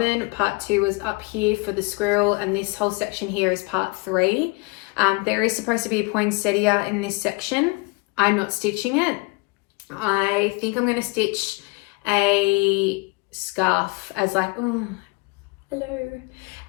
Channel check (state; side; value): quieter; right; 27.7 dB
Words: part 2 was up here for the squirrel, and this whole section here is part 3. There is supposed to be a poinsettia in this section. I'm not stitching it. I think I'm going to stitch a scarf as like, oh, hello,